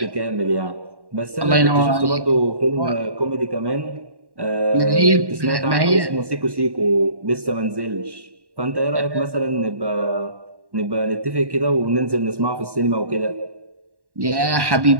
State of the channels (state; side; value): late; left; 1.1 ms